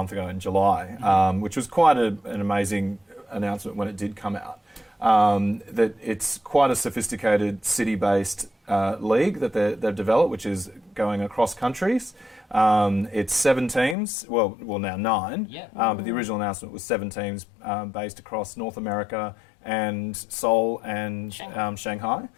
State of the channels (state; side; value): drops out; right; at 14.0 s